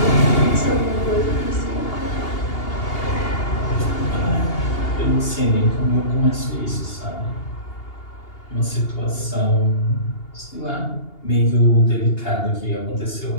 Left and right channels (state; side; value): late; right; 2.8 ms